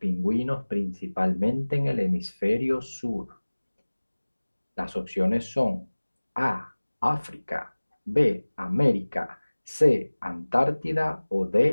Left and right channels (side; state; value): both; inverted; correlation -1.00